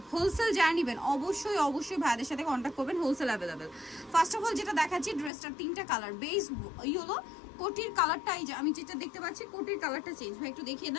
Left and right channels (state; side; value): drops out; right; at 5.3 s